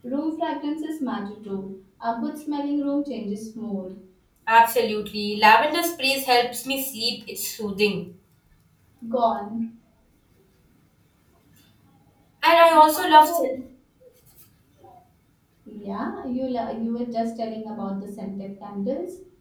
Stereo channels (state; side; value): identical; both; correlation 1.00